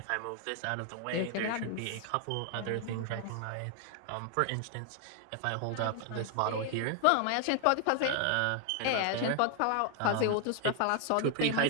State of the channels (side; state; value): both; different; correlation 0.00